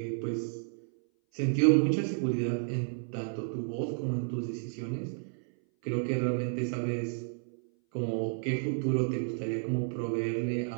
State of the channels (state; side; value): silent; left; 57 dB below the other